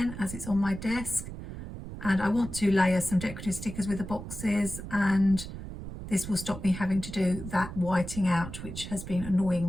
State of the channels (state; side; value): noise; right; rumble, 10 dB below the sound